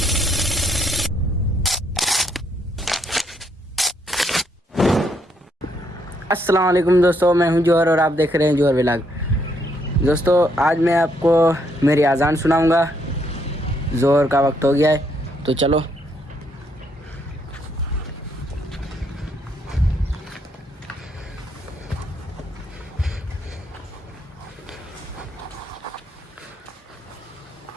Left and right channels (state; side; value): normal; both; correlation 0.73